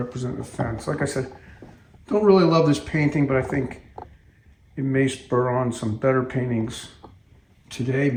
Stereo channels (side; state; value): both; identical; correlation 1.00